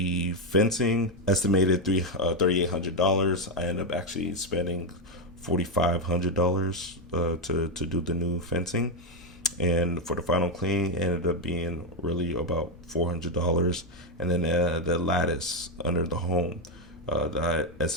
fencing, estimated $3,800. I ended up actually spending $4,500 to do the new fencing, and for the final clean, ended up being really about $400. And then the lattice under the home, that I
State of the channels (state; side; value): normal; both; correlation 0.06